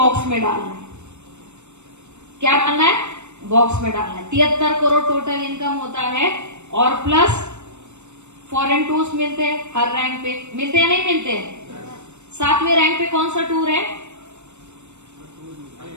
में डालना है। क्या डालना है? बॉक्स में डालना है। 73 करोड़ टोटल इनकम होता है। और प्लस फॉरेन टूर्स मिलते हैं हर रैंक पे। मिलते हैं नहीं मिलते? 7वें रैंक पे कौन सा टूर है?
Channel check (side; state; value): left; late; 0.83 ms